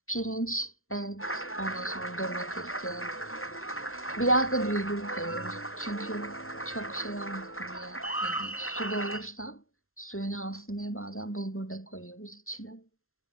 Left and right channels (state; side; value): late; right; 0.62 ms